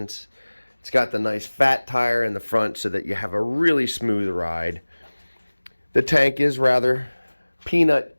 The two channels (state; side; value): inverted; both; correlation -1.00